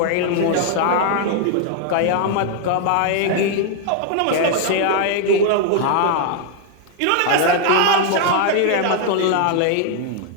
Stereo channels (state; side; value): different; both; correlation 0.00